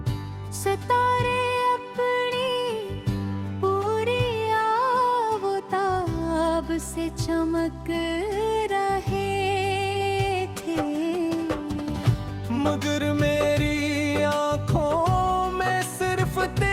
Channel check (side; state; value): both; identical; correlation 1.00